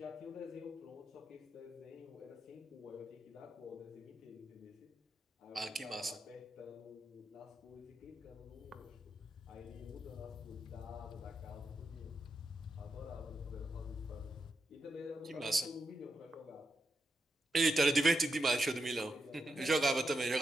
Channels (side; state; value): both; normal; correlation 0.85